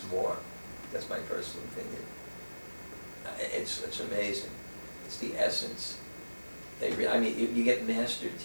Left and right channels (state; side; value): inverted; both; correlation -1.00